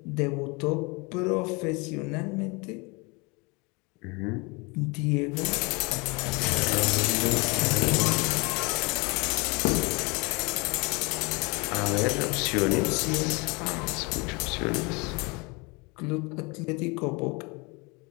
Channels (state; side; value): quieter; right; 28.2 dB